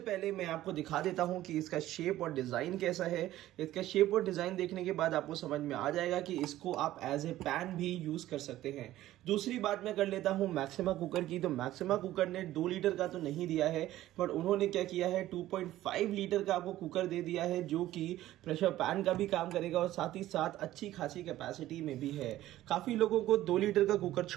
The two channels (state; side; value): quieter; left; 14.6 dB